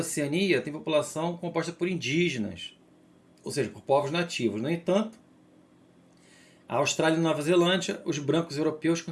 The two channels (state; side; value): identical; both; correlation 1.00